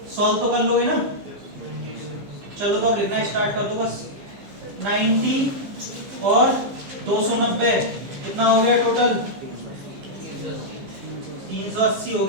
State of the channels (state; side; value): late; left; 15 ms